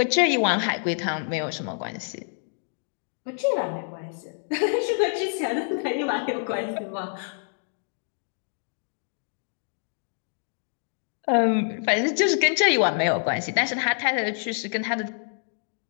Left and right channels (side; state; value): right; silent; 60 dB below the other